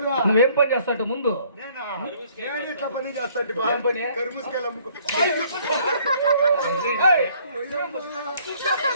నువ్వేం పని చేస్తావు ముందు? ఏం పని?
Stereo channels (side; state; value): both; inverted; correlation -0.61